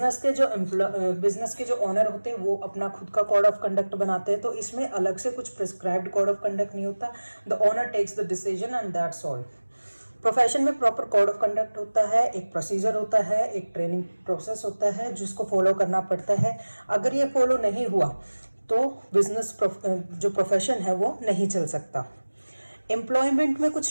के जो ओनर होते हैं वो अपना खुद का कोड ऑफ कंडक्ट बनाते हैं, तो इसमें अलग से कुछ प्रिस्क्राइब्ड कोड ऑफ कंडक्ट नहीं होता. The owner takes the decision and that's all. Profession में प्रॉपर कोड ऑफ कंडक्ट होता है, एक प्रोसीजर होता है, एक ट्रेनिंग प्रोसेस होता है जिसको फॉलो करना पड़ता है. अगर ये फॉलो नहीं हुआ तो बिजनेस जो प्रोफेशन है वो नहीं चल सकता. एम्प्लॉयमेंट में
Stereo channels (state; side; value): inverted; both; correlation -1.00